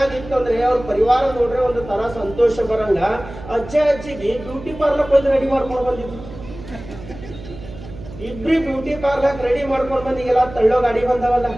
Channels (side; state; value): right; noise; hum, 14 dB below the sound